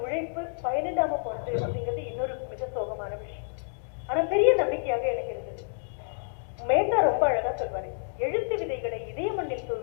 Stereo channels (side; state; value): right; silent; digital silence